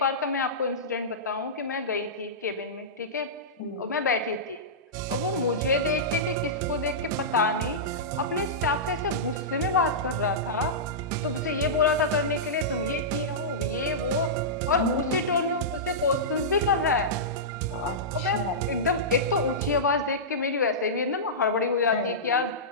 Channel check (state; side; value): normal; both; correlation -0.15